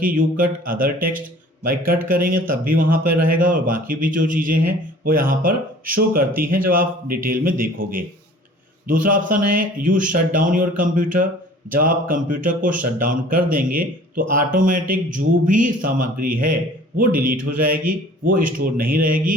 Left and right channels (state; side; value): normal; both; correlation 0.49